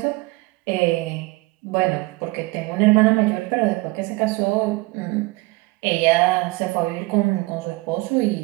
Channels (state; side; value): quieter; left; 23.2 dB